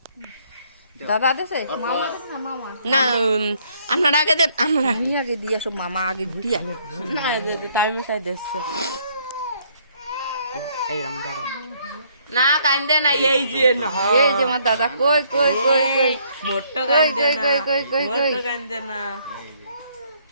দাদা দেছে মামা দেছে না মামা না আপনারা আগে দেন আমরা আমি আগে দিয়ে আসো মামা আগে দিয়ে না টাইম চাই দিচ্ছে এই রাম দাদা না কান্দে না এই যে না এই যে আমার দাদা কই মোট্টো কই কান্দে না কই মোট্টো কান্দে না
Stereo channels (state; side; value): inverted; both; correlation -0.67